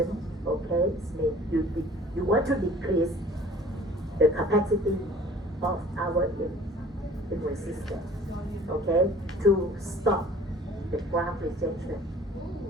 Okay, it means you want to decrease the capacity of our immune system. Okay, to stop the graft rejection.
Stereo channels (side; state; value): both; normal; correlation 0.49